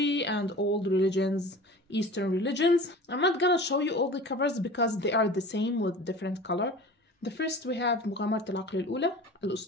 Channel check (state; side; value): normal; both; correlation 0.39